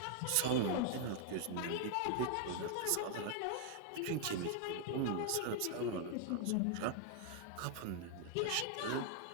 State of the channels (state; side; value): different; both; correlation 0.00